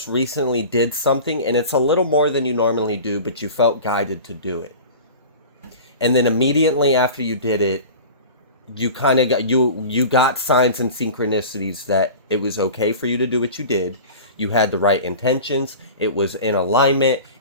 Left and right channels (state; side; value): inverted; both; correlation -0.36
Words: recently did something, and it's a little more than you normally do, but you felt guided to do it. And then immediately after you did it, You kind of got you got signs and synchronicities that it was okay for you to do what you did. You had the right intentions, it was in alignment,